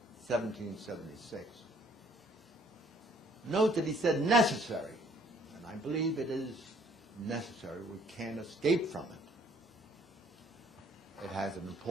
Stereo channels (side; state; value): both; normal; correlation 0.61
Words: 1776. Note that he said necessary, and I believe it is necessary. We can't escape from it. It has an